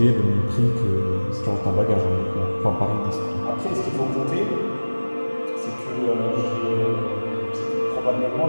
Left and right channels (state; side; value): inverted; both; correlation -1.00